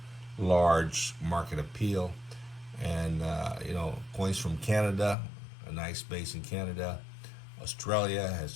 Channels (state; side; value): drops out; right; at 5.2 s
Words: large market appeal. And, coins from Canada, a nice base in Canada. Australia